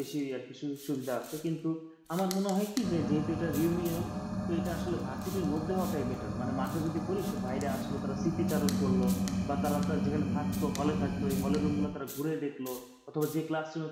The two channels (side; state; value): both; identical; correlation 1.00